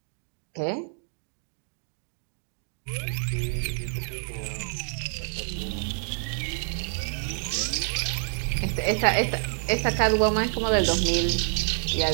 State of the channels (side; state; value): left; silent; 60 dB below the other